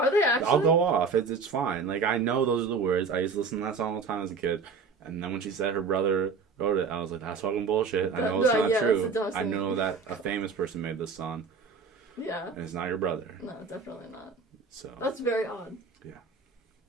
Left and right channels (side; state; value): left; quieter; 4.9 dB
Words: they actually? I'll go off. It's fine. Like, I know those are the words. I used to listen to that song all the time as a kid. And then when she said her brother wrote it, I was like, that's fucking bullshit. I know it's not true. I know that a famous person made this song. Yeah. And it's not your brother. No, definitely not. So. That's very odd. Yeah.